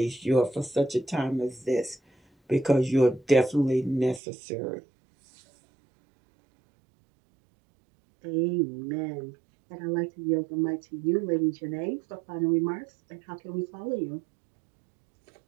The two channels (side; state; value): left; drops out; at 4.2 s